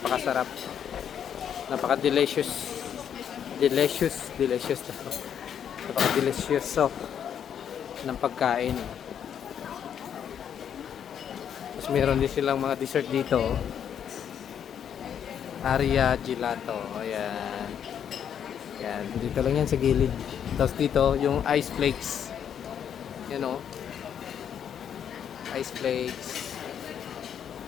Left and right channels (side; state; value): right; quieter; 8.7 dB